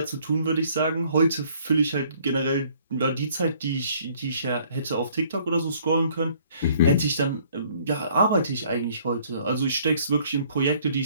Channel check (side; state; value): both; inverted; correlation -0.60